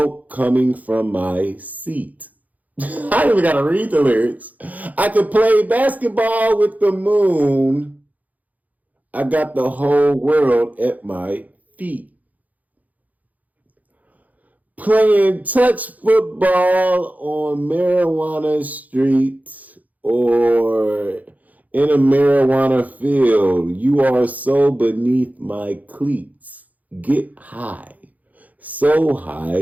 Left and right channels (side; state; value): left; late; 0.078 ms